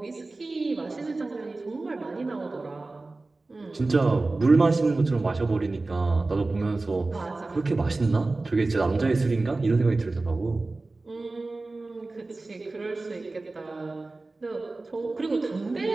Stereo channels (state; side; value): quieter; left; 3.3 dB